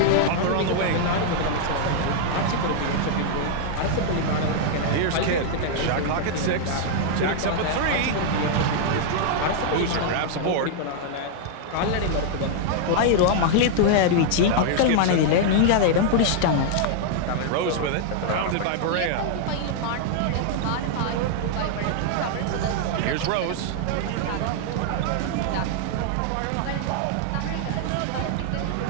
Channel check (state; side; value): different; both; correlation -0.01